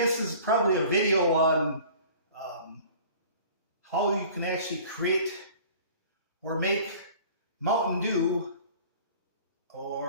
this is probably a video on how you can actually create or make Mountain Dew,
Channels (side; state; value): both; inverted; correlation -0.46